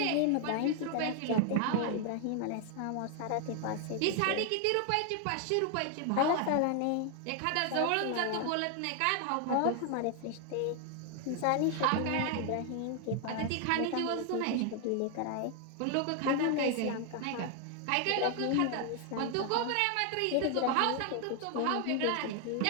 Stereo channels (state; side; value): different; both; correlation 0.00